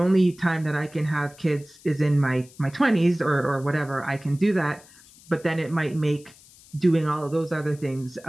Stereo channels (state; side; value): noise; left; hiss, 24 dB below the sound